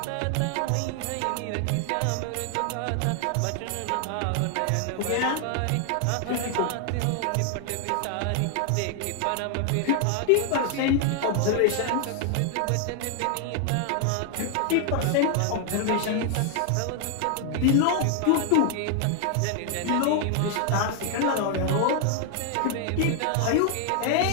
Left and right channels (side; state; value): both; different; correlation 0.00